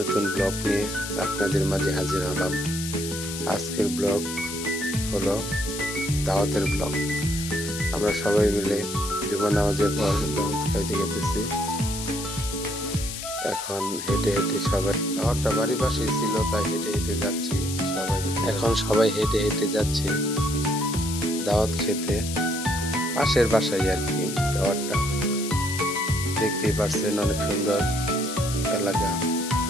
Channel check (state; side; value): noise; left; hiss, 7 dB below the sound